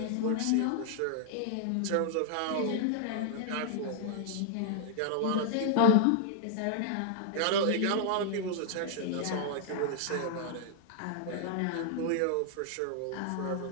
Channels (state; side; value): different; both; correlation 0.00